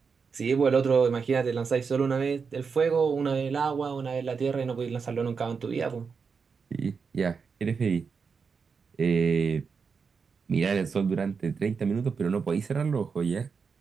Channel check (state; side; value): quieter; left; 5.5 dB